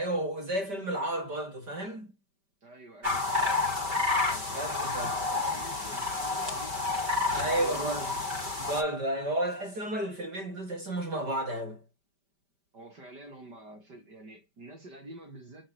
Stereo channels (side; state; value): left; late; 5.1 ms